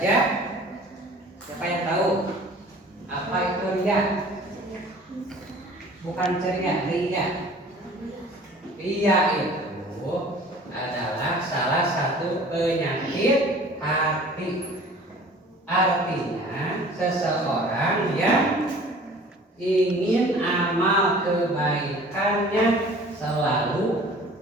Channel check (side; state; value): both; normal; correlation 0.47